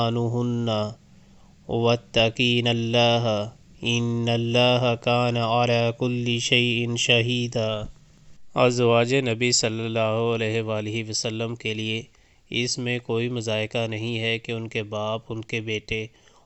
واتقین اللہ ان اللہ کان علی کل شیء شہیدا۔ ازواج نبی صلی اللہ علیہ وآلہ وسلم کے لیے اس میں کوئی مضائقہ نہیں ہے کہ ان کے باپ، ان کے بیٹے،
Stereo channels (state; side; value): identical; both; correlation 1.00